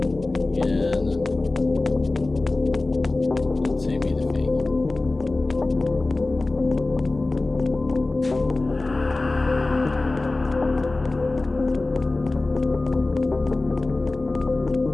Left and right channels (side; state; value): right; quieter; 3.1 dB